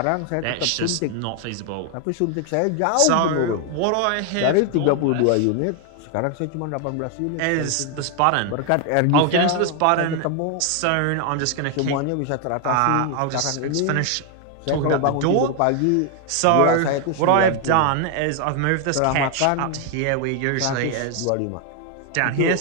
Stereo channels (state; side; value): different; both; correlation 0.00